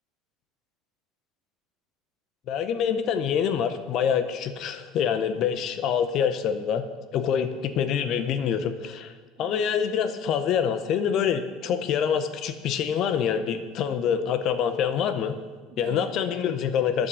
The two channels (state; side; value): quieter; right; 7.5 dB